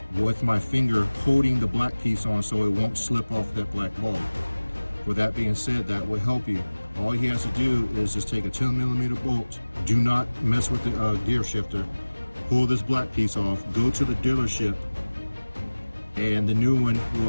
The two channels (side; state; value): both; inverted; correlation -1.00